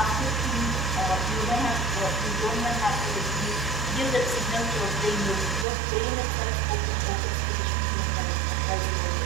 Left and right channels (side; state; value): left; drops out; at 5.7 s